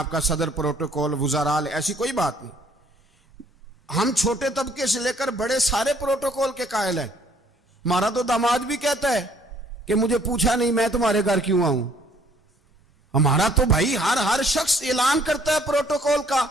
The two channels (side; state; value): both; normal; correlation 0.62